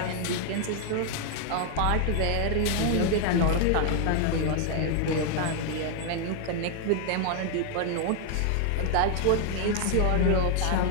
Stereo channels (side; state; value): both; different; correlation 0.00